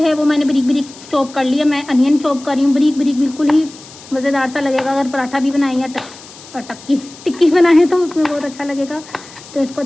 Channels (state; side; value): noise; left; hiss, 19 dB below the sound